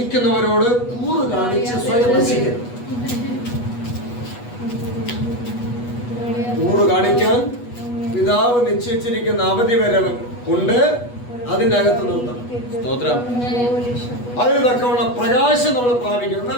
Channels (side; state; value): right; late; 8.2 ms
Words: കൂറ് കാണിച്ച് സ്വയം നശിക്കുന്നു. കൂറ് കാണിക്കാൻ പിതാവ് നിശ്ചയിച്ചിരിക്കുന്ന അവധി വരെ ഉണ്ട്. അതിനകത്ത് നിർത്തണം. അതിന് തക്കവണ്ണം പ്രകാശം നമ്മൾ പ്രാപിക്കണം.